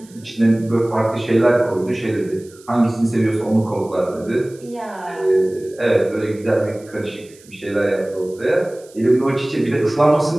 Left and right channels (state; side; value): noise; right; hiss, 25 dB below the sound